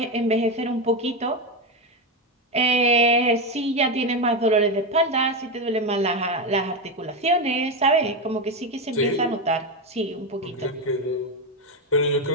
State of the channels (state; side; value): normal; both; correlation 0.12